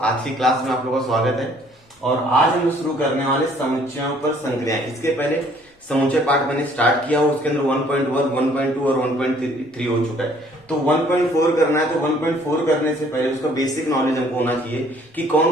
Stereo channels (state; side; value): normal; both; correlation 0.59